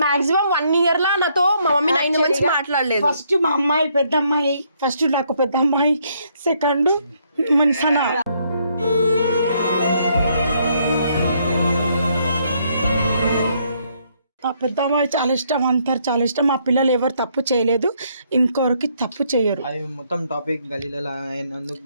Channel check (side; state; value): both; inverted; correlation -0.71